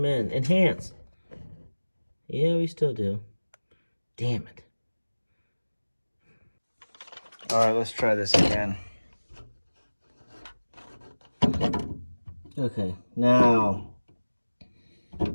in. Enhance. Yeah, we still do. Damn it. All right, let's try this again. Okay, now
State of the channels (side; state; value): both; inverted; correlation -1.00